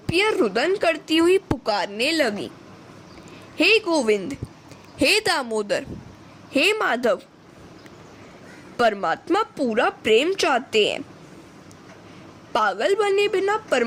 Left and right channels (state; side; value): identical; both; correlation 1.00